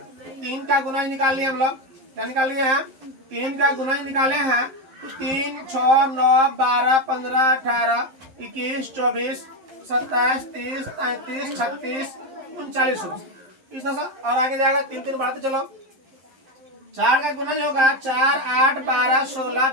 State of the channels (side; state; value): left; late; 11 ms